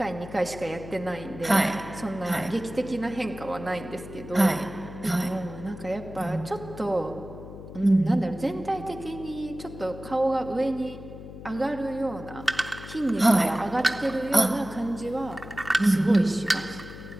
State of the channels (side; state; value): left; noise; hum, 13 dB below the sound